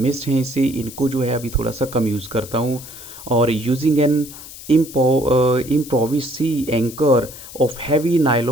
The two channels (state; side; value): noise; left; hiss, 15 dB below the sound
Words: हैं इसे इनको जो है अभी थोड़ा सा कम यूज़ करता हूँ, और using an improvised sea anchor of heavy